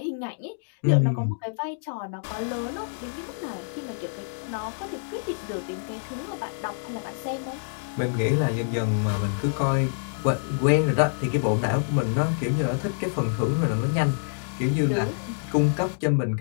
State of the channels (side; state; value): right; silent; digital silence